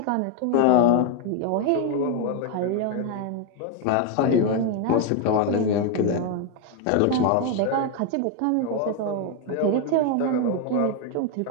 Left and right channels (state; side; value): different; both; correlation 0.01